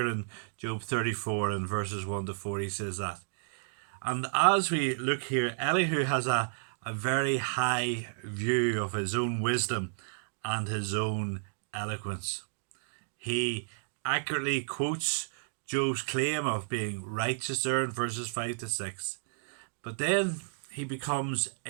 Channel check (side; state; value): left; silent; digital silence